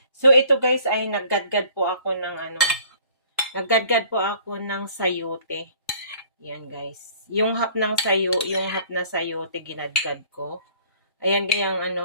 So, ito guys ay naggadgad po ako ng sayote. Yan guys. Yung hap na sayote ginadgad ko. Ayan gayang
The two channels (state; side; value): inverted; both; correlation -0.53